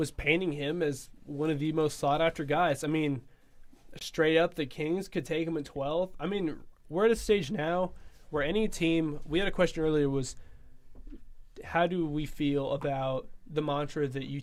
painting him as one of the most sought after guys. I mean, straight up, the Kings could take him at 12th. I mean, we're at a stage now where any team. We had a question earlier was, how do we feel about the mantra that you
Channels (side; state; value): both; identical; correlation 1.00